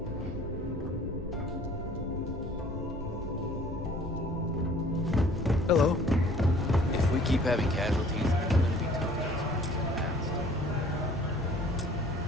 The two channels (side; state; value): both; normal; correlation 0.53